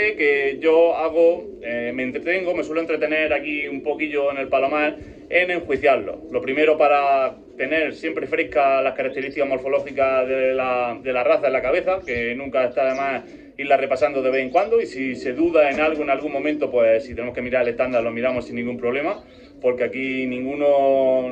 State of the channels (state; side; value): identical; both; correlation 1.00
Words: que yo me entretengo, me suelo entretener aquí un poquillo en el Palomar en enjuiciarlo. Lo primero para tener siempre frescas las características morfológicas de la raza en la cabeza, que nunca está de más irla repasando de vez en cuando, y si se duda en algo en algún momento, pues si tenemos que mirar el estándar lo miramos sin ningún problema, porque aquí ninguno